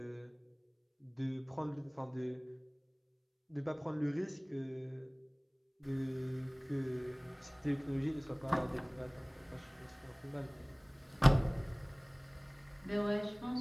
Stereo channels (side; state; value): both; identical; correlation 1.00